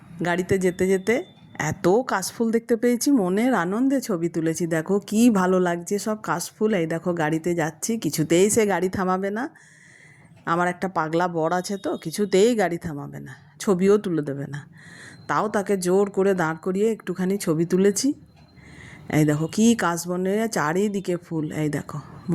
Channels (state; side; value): identical; both; correlation 1.00